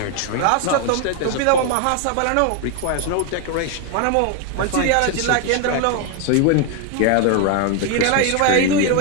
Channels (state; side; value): different; both; correlation 0.01